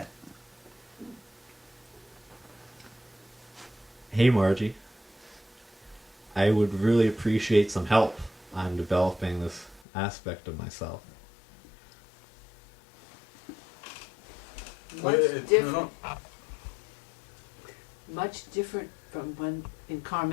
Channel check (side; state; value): right; drops out; at 9.9 s